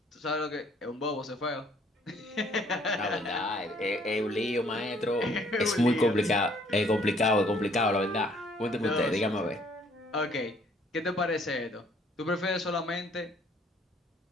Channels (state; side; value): normal; both; correlation 0.62